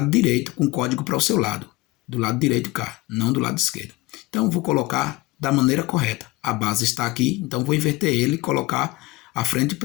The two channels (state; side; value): quieter; right; 20.5 dB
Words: direito, com código para o seu lado. Do lado direito cá, não do lado esquerdo. Então, vou colocar da maneira correta. A base está aqui, então vou inverter ele e colocar a frente